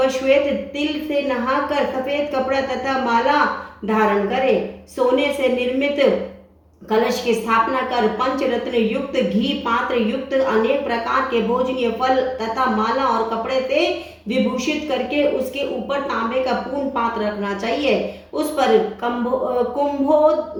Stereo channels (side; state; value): both; identical; correlation 1.00